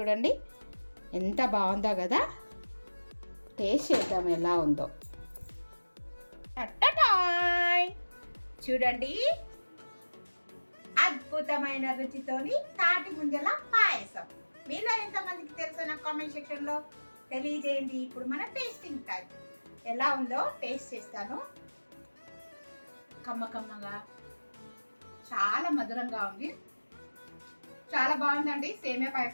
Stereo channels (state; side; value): inverted; both; correlation -1.00